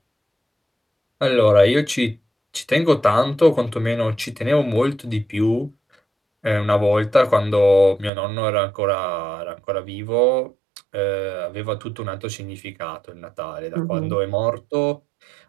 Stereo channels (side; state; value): left; drops out; at 8.1 s